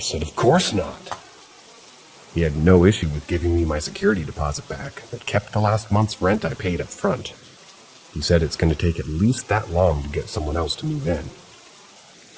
"Of course not." He had no issue with giving me my security deposit back, but kept the last month's rent I paid up front. He said it's going to take at least that long to get someone else to move in.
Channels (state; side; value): identical; both; correlation 1.00